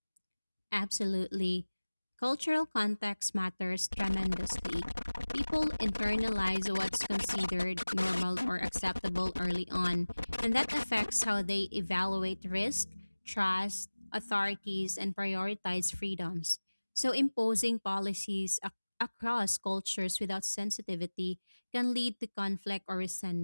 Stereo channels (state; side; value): inverted; both; correlation -1.00